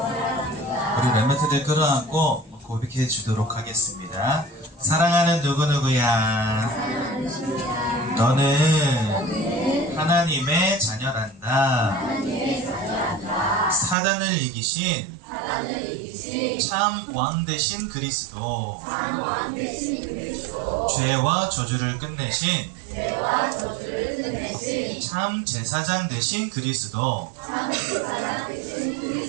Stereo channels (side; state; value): left; drops out; at 14.0 s